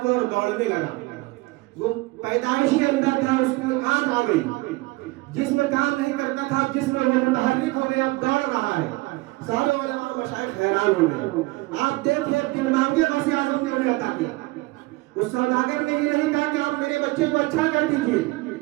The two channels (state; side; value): quieter; left; 22.4 dB